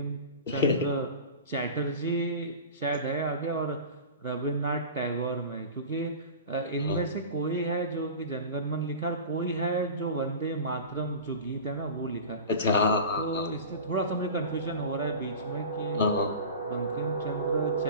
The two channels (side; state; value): both; inverted; correlation -0.34